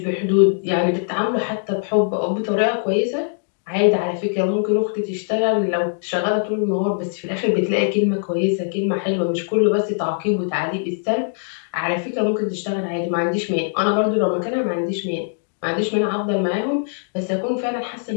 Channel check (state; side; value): silent; right; digital silence